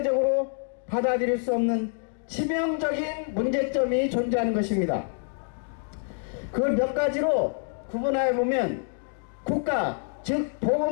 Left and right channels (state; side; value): silent; right; 60 dB below the other